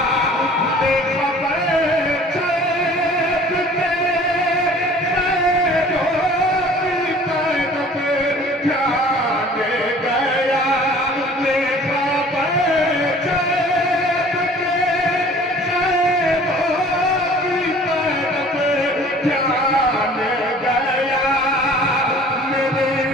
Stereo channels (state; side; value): normal; both; correlation 0.49